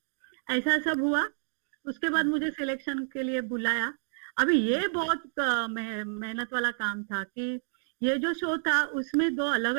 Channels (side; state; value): left; silent; digital silence